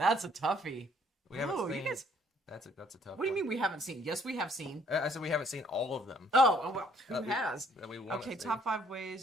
a toughie. We haven't seen. That's a tough. What do you mean we haven't seen? Yes, we have seen. I said we haven't seen all of them. Oh well, who has? Okay, top 5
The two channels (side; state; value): both; normal; correlation 0.64